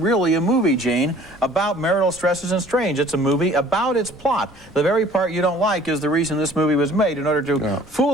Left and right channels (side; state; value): both; normal; correlation 0.52